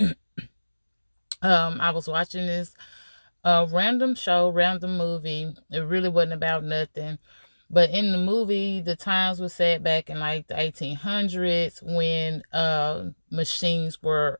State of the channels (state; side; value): inverted; both; correlation -1.00